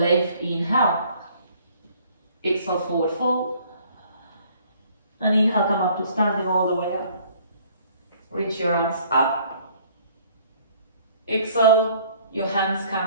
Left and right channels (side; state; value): both; inverted; correlation -0.58